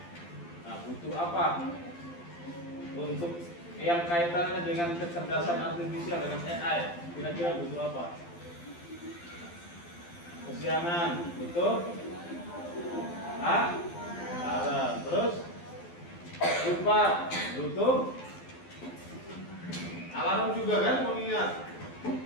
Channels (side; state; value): right; late; 12 ms